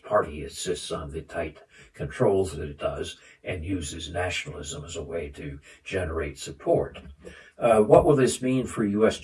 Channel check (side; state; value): both; identical; correlation 1.00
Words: Party insists on the tight controls that it does and uses nationalism as a way to generate support. What will this mean for